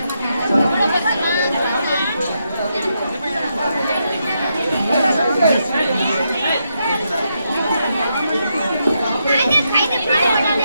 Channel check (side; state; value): both; inverted; correlation -0.81